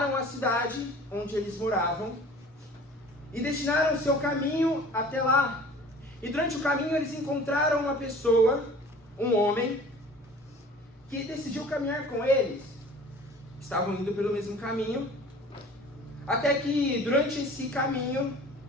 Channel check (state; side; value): normal; both; correlation 0.46